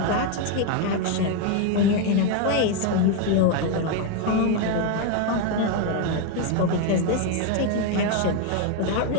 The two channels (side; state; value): both; different; correlation 0.01